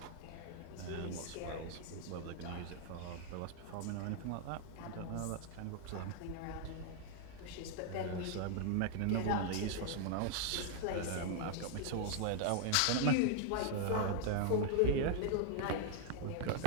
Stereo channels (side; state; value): both; different; correlation 0.00